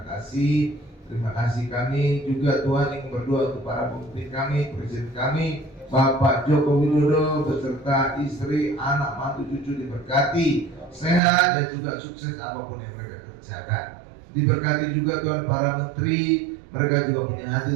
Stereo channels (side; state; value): left; drops out; at 11.2 s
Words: kasih. Terima kasih kami juga Tuhan ingin berdoa untuk para pemimpin kami, presiden kami, Bapak Joko Widodo beserta istri, anak, mantu, cucu diberkati, sehat dan juga sukses apapun yang mereka kerjakan. Diberkati juga Tuhan para menteri, mereka juga punya